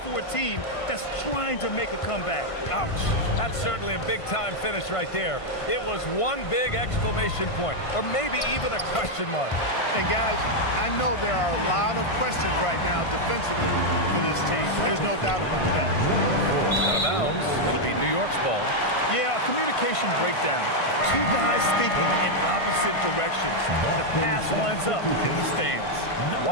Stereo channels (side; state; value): right; late; 1.5 ms